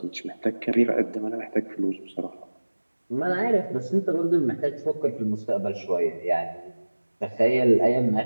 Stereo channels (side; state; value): both; inverted; correlation -1.00